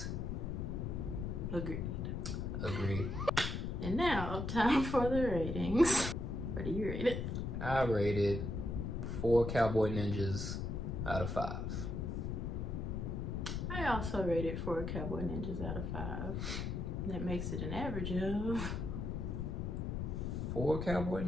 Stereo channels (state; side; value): noise; left; rumble, 2 dB below the sound